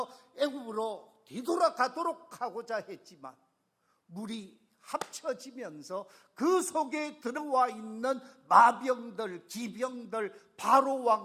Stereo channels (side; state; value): both; identical; correlation 1.00